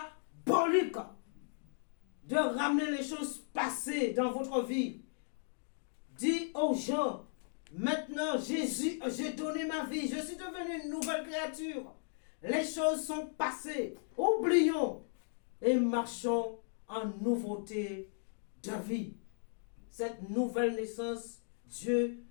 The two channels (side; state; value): right; silent; digital silence